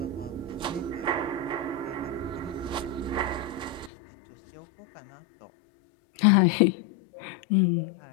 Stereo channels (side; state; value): right; drops out; at 3.9 s